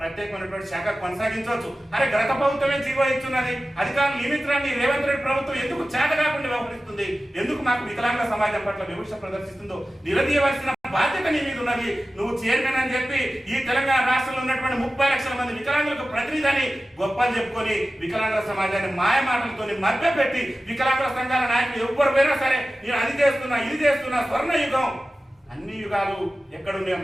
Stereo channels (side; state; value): both; normal; correlation 0.95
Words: శాఖ కొనసాగించవచ్చు. అరే గత ప్రభుత్వమే జీవో ఇస్తున్నది, అధికారులు నియమించడాన్ని రేవంత్ రెడ్డి ప్రభుత్వం ఎందుకు చేత కాకుండా వ్యవహరిస్తుంది? ఎందుకు మాకు వికలాంగుల సమాజం పట్ల వివక్ష ప్రదర్శిస్తుందో నిలదీయవలసిన బాధ్యత నీ మీద ఉన్నది. నువ్వు చైర్మన్ అని చెప్పి ఈ తెలంగాణ రాష్ట్రంలో ఉన్నటువంటి 30 లక్షల మంది వికలాంగులకు ప్రతినిధిని గొప్పలు చెప్పుకొని వికలాంగుల సమాజాన్ని మాయ మాటలతో మభ్యపెట్టి వికలాంగుల సంఘాల నాయకులు ఎవ్వరు పోయినా సరే నేను అది చేస్తున్నా, ఇది చేస్తున్నా, స్వర్ణ యుగం, అన్ని యుగాలు ఎక్కడున్నాయో